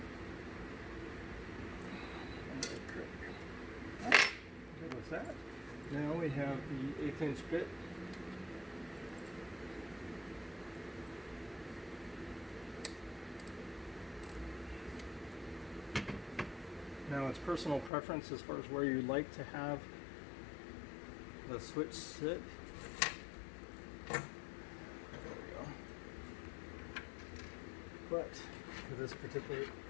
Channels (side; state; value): right; drops out; at 17.9 s